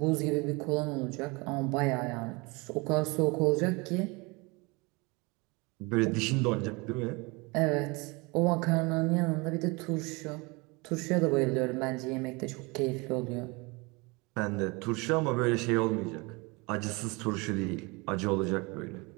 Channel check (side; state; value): left; quieter; 26.7 dB